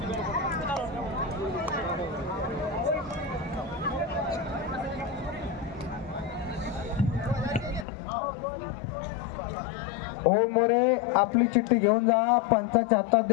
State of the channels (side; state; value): right; drops out; at 7.9 s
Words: ओम मोरे आपली चिठ्ठी घेऊन जा, पंचाच्या हातात